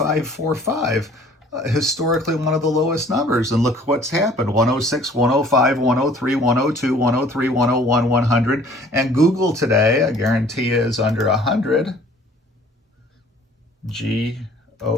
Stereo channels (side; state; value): both; normal; correlation 0.53